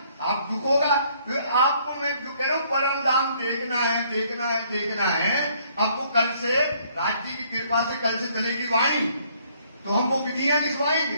आप दुख होगा। तो आपको मैं जो कह रहा हूं, परम धाम देखना है, देखना है, देखना है। आपको कल से राज्य की कृपा से कल से चलेगी वाणी, तो हम वो विधियां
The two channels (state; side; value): inverted; both; correlation -0.64